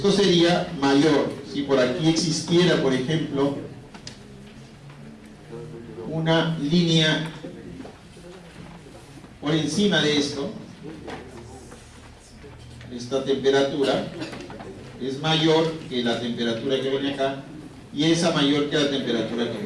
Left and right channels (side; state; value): both; identical; correlation 1.00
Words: sería mayor. Si por aquí existiera, por ejemplo, una línea por encima de esto, esta temperatura es mayor que la temperatura que viene acá, y esa mayor que la temperatura que